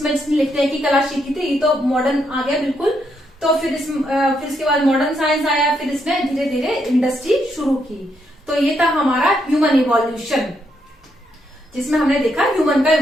जिसने लिखने की कला सीखी थी ये तो मॉडर्न आ गया बिल्कुल। तो फिर इसके बाद मॉडर्न साइंस आया, फिर इसने धीरे धीरे इंडस्ट्री शुरू की। तो ये था हमारा ह्यूमन इवोल्यूशन, जिसमें हमने देखा ह्यूमन का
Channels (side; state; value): both; normal; correlation 0.77